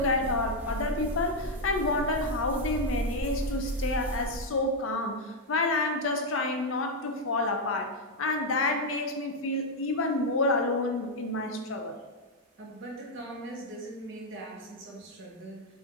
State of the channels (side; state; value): both; normal; correlation 0.02